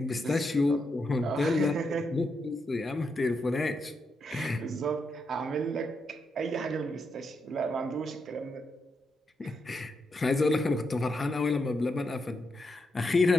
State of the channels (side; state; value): both; normal; correlation 0.82